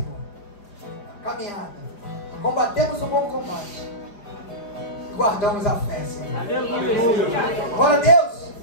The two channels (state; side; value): late; right; 4.9 ms